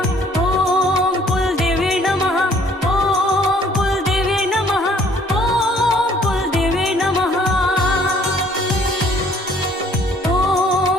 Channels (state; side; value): normal; both; correlation 0.59